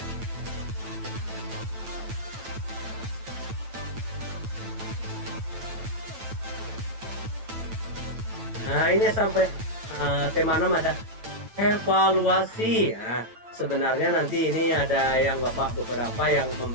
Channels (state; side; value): late; left; 9.0 ms